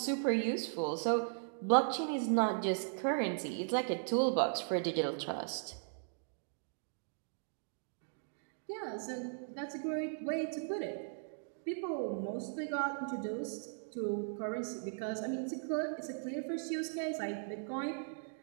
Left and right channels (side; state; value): left; silent; digital silence